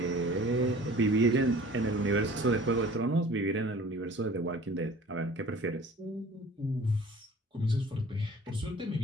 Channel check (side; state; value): both; normal; correlation 0.46